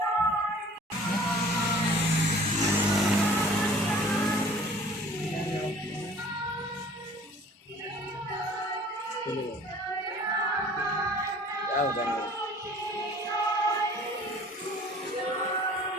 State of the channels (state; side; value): normal; both; correlation 0.49